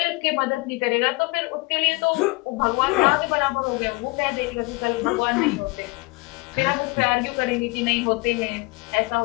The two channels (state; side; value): quieter; right; 25.5 dB